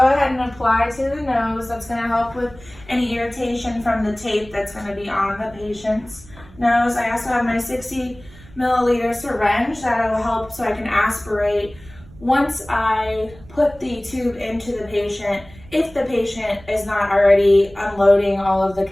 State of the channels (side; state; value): right; noise; rumble, 21 dB below the sound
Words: and apply to the nose. That's going to help with any irritation from the tape that's going to be on the patient's nose. I also have my 60 milliliter syringe that will help so I can aspirate once I put the tube into the patient, if the patient is not already unloading all of the